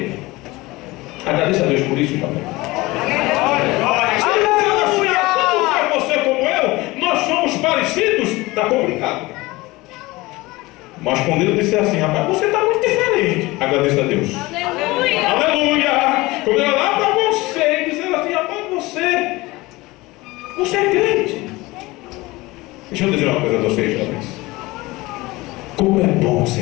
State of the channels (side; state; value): right; quieter; 21.0 dB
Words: Agradeça a Deus por isso, irmão. Se você como eu, nós somos parecidos, está complicado. Mas quando ele disser assim: rapaz, você está muito diferente, agradeça a Deus. Aleluia! Aleluia! Quando eu olhar para você e dizer assim: rapaz, você é crente. Deixa eu dizer uma coisa a vocês, jovens. Como é bom